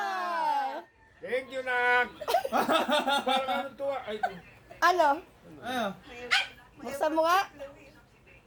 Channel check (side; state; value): both; identical; correlation 1.00